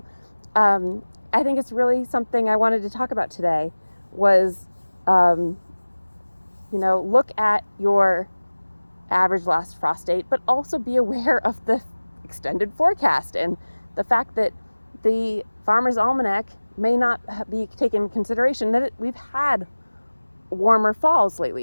I think it's really something I wanted to talk about today was, look at your average last frost date, but also be aware of the extended forecast and the fact that the Farmer's Almanac may not be taken into consideration that we've had warmer falls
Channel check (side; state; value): both; inverted; correlation -1.00